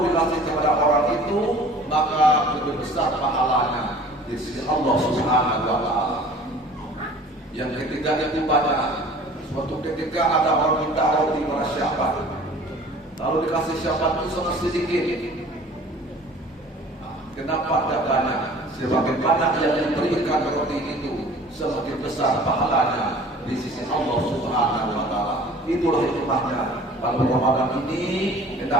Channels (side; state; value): both; normal; correlation 0.47